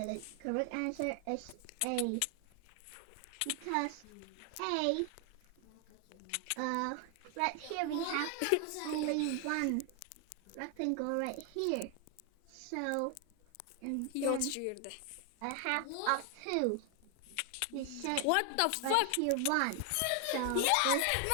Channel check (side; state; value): both; different; correlation 0.00